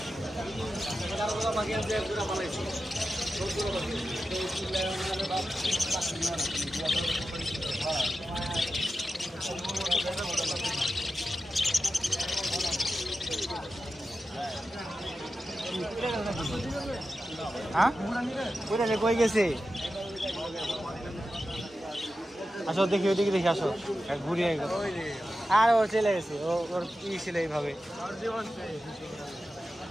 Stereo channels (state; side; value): normal; both; correlation 0.92